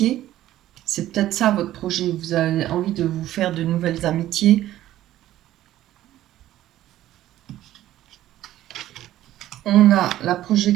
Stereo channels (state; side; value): quieter; left; 13.7 dB